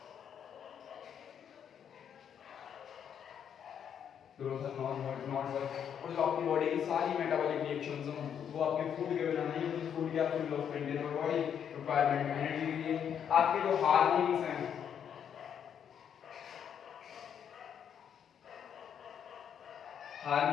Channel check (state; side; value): quieter; right; 8.4 dB